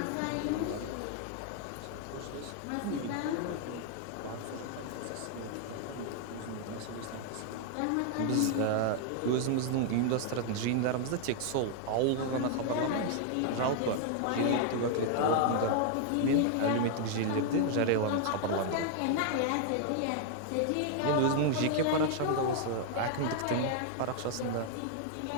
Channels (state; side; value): different; both; correlation 0.00